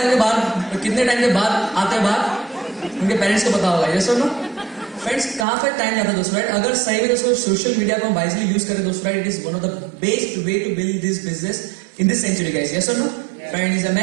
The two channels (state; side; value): drops out; left; at 5.5 s